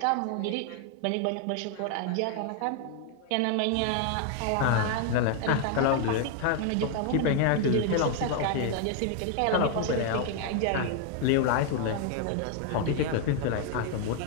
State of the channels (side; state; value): both; different; correlation 0.00